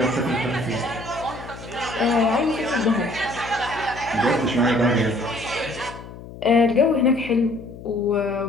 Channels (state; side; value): noise; left; hum, 15 dB below the sound